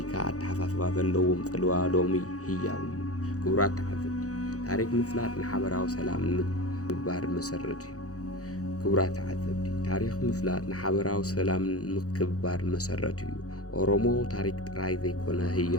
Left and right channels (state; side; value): late; right; 0.66 ms